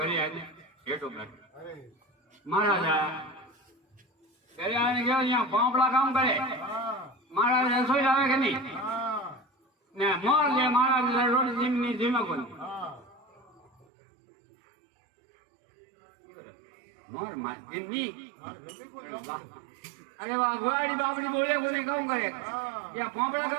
आने हेठो बैठ महाराज घरे आने गया यहाँ पापड़ा काम करे महाराज रसोई लावे के नहीं ने मोर ले महाराज रोटी जिमनी जिमा को मोर मार जिमनी अरे वाह गुआड़ी बाबड़ी बोले को नहीं कहूँ करे या पापड़ा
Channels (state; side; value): drops out; left; at 13.9 s